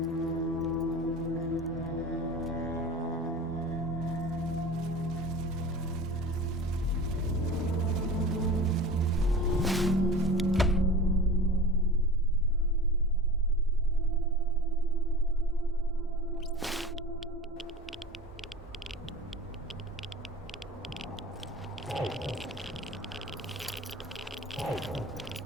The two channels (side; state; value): both; normal; correlation 0.35